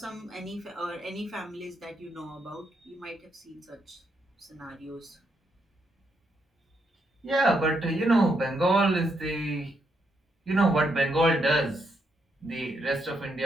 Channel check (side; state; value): both; normal; correlation 0.78